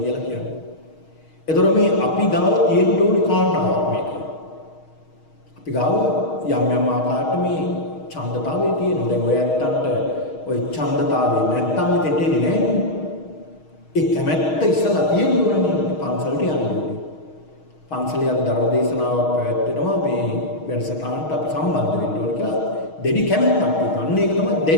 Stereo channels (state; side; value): late; right; 6.4 ms